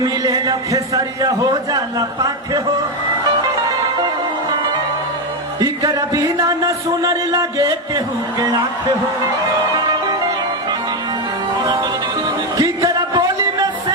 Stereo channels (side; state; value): both; normal; correlation 0.08